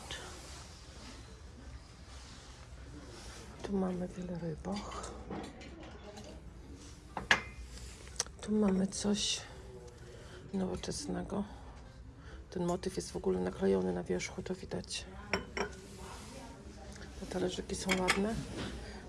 Tu mamy wiele rybach. Tu mamy coś nowoczesnego. Ten motyw jest w ogóle naklejony na wierzchu, to widać. Te talerzyki są ładne,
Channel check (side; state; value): both; identical; correlation 1.00